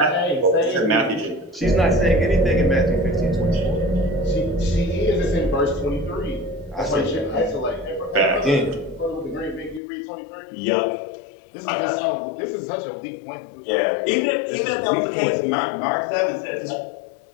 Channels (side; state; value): right; drops out; at 9.8 s